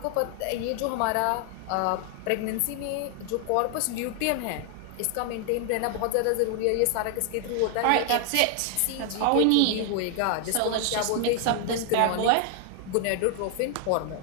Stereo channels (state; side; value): different; both; correlation 0.00